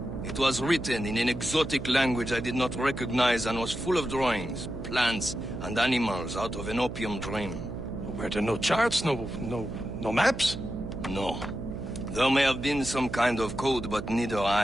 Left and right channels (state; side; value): noise; right; hum, 8 dB below the sound